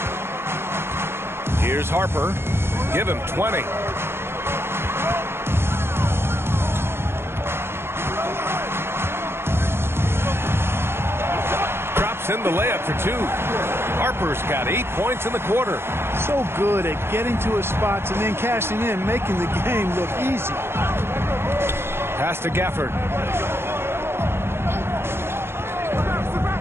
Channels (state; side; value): late; left; 0.12 ms